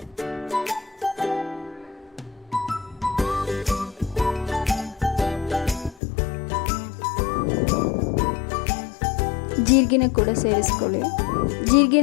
ಜೀರಿಗೆನ ಕೂಡ ಸೇರಿಸ್ಕೊಳ್ಳಿ.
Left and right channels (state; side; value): drops out; right; at 6.0 s